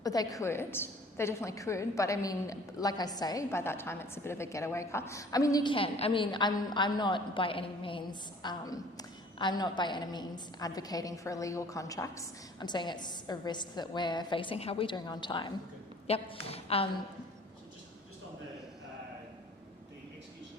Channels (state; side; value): normal; both; correlation 0.51